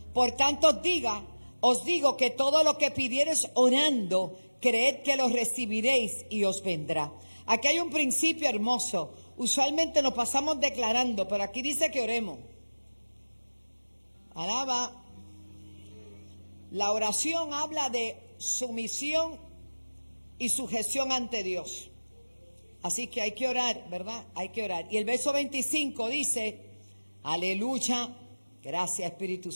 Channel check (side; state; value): both; inverted; correlation -1.00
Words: Por tanto os digo que todo lo que pidiereis orando, creed que lo recibiréis y os vendrá. Aquí hay un principio hermoso. Usualmente nos pasamos declarando, pero aquí dice que oremos. Alaba. La oración habla de sumisión y sujeción ante Dios. Así que hay que orar, ¿verdad? Hay que orar. Y el verso 25 dice, aleluya, gracias Espíritu